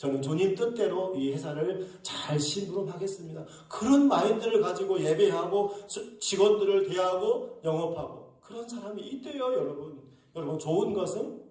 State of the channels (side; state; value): both; identical; correlation 1.00